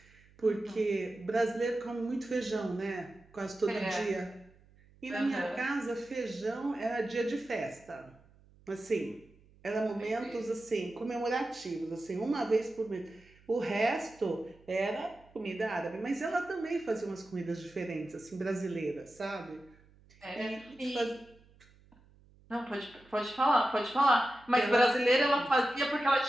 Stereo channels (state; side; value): noise; right; hum, 28 dB below the sound